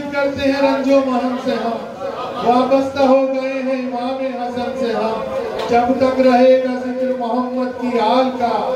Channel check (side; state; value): both; identical; correlation 1.00